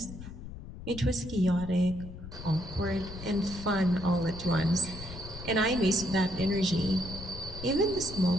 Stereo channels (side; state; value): left; noise; rumble, 12 dB below the sound